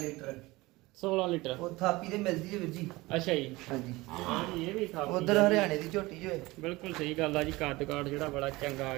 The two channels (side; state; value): left; quieter; 20.9 dB